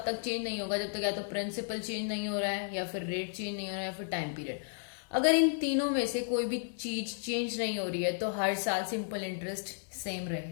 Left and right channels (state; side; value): silent; right; 56 dB below the other